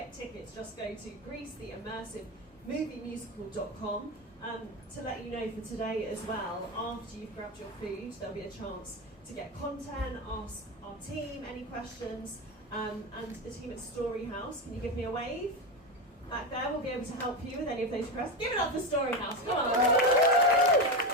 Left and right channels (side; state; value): both; normal; correlation 0.15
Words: go to GreeceTheImmersiveMovieMusical.com. To let you know for today as well, after you've grabbed your food, there'll be a chance to get content, ask our team any questions, and the team at Storyhouse. Can you give me a wave? Back there, we'll be able to help you with any of those requests. Give it up for Storyhouse, come on!